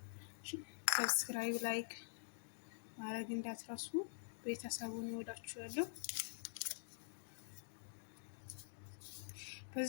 ሰብስክራይብ፣ ላይክ ማድረግ እንዳትረሱ። ቤተሰቡን እወዳችኋለሁ።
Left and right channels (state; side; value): silent; right; digital silence